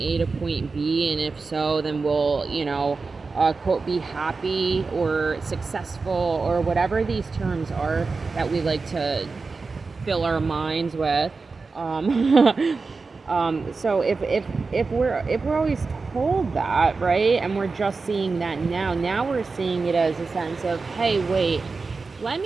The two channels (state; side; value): quieter; left; 4.2 dB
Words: to point B, and if so, then we'll, quote, be happy or successful, or whatever these terms are that we like to fill our minds with. So if we're always told that, right, and we're just seeing that now we're seeing it as a sense of, hey, wait, let